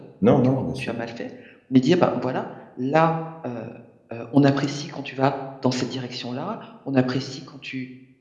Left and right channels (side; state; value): both; identical; correlation 1.00